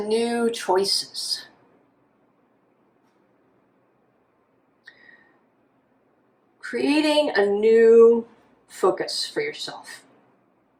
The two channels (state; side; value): identical; both; correlation 1.00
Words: new choices. Creating a new focus for yourself.